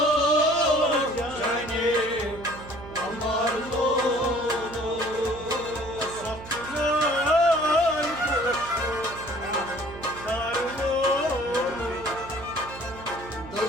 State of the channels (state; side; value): noise; right; hum, 15 dB below the sound